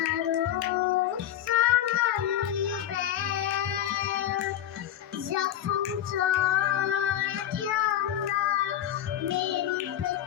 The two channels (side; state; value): right; quieter; 11.4 dB